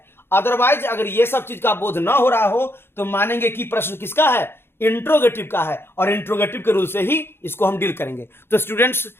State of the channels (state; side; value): late; right; 0.11 ms